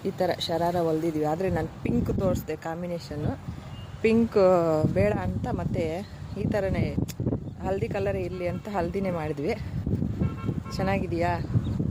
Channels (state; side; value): identical; both; correlation 1.00